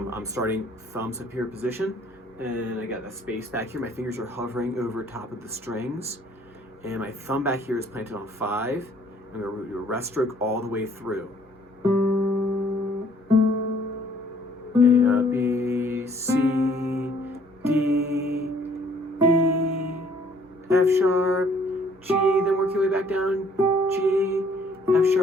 I'm starting thumbs up here position, and I got that space back here. My fingers are hovering over top of the strings, and my thumb back here is planted on 5. I'm going to do a rest stroke all the way through. A, B, C, D, E, F sharp, G, then work your way back down, G, F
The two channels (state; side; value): normal; both; correlation 0.60